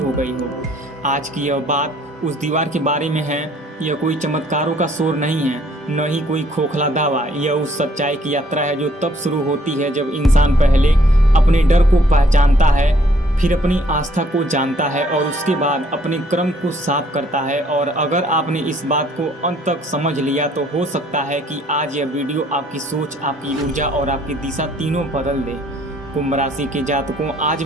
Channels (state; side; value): normal; both; correlation 0.63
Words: गई हो। आज की यह बात उस दीवार के बारे में है। यह कोई चमत्कारों का शोर नहीं है, न ही कोई खोखला दावा। यह उस सच्चाई की यात्रा है जो तब शुरू होती है जब इंसान पहले अपने डर को पहचानता है, फिर अपनी आस्था को जानता है और उसके बाद अपने कर्म को साफ करता है। और अगर आपने इस बात को अंत तक समझ लिया तो हो सकता है कि आज यह वीडियो आपकी सोच, आपकी ऊर्जा और आपकी दिशा तीनों बदल दे। कुंभ राशि के जातकों, आज